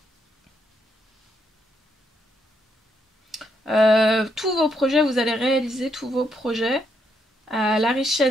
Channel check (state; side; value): normal; both; correlation 0.76